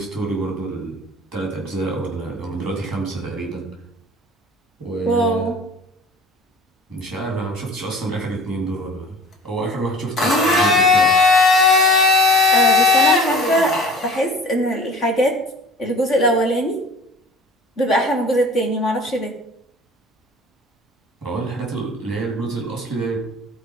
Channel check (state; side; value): normal; both; correlation 0.44